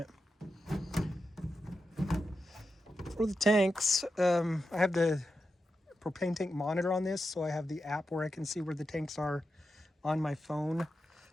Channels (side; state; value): both; normal; correlation 0.89